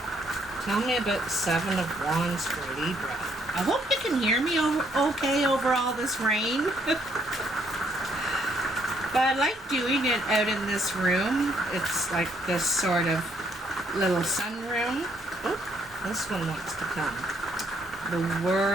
Tell me about the Seven of Wands for Libra. I hope you can hear me okay over all this rain. But I like doing it out in this room. It's like this sort of little sunroom. Oh, this one wants to come. The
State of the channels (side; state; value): both; normal; correlation 0.69